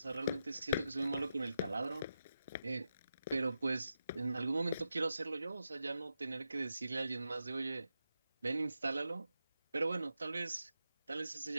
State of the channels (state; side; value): inverted; both; correlation -0.88